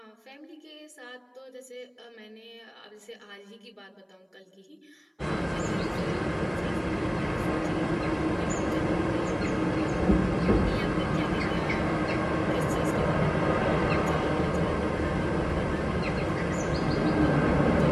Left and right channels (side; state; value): both; identical; correlation 1.00